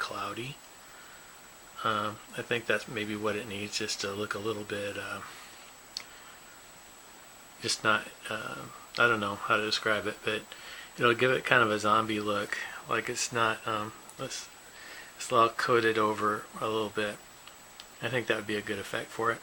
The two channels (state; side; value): identical; both; correlation 1.00